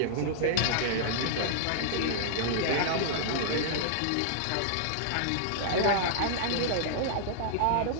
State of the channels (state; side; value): different; both; correlation -0.01